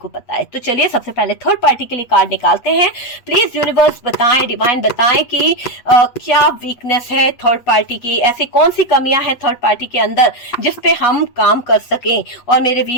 पता है। तो चलिए सबसे पहले थर्ड पार्टी के लिए कार्ड निकालते हैं। प्लीज यूनिवर्स बताएं, डिवाइन बताएं कि क्या वीकनेस है थर्ड पार्टी की, ऐसी कौन सी कमियां हैं थर्ड पार्टी के अंदर जिस पे हम काम कर सकें और मेरे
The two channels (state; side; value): late; right; 8.3 ms